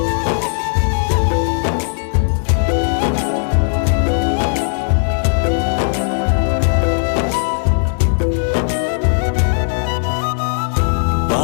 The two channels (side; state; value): right; silent; digital silence